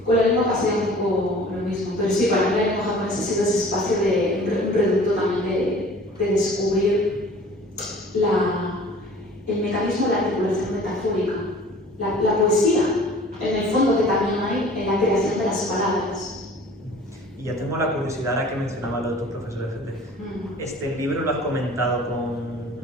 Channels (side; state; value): both; normal; correlation 0.47